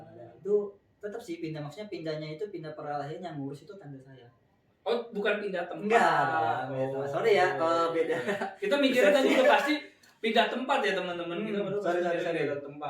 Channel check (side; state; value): both; identical; correlation 1.00